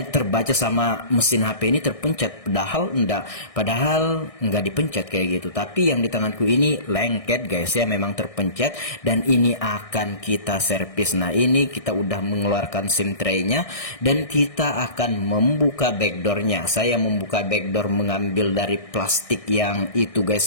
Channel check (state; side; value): late; right; 1.6 ms